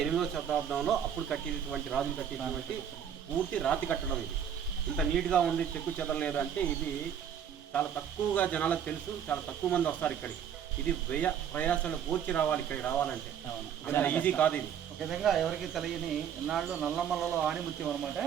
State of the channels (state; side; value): quieter; left; 8.6 dB